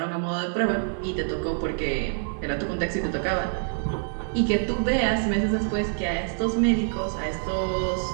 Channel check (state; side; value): silent; left; digital silence